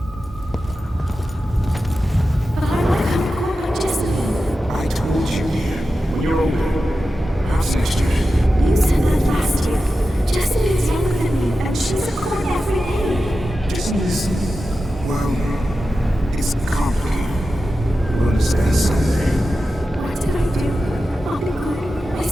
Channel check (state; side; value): normal; both; correlation 0.92